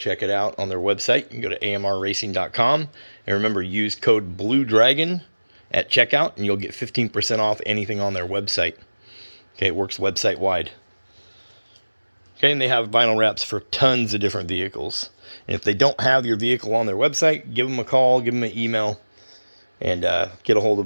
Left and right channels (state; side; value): inverted; both; correlation -1.00